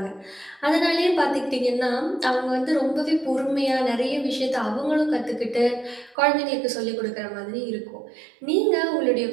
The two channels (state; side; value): drops out; left; at 6.2 s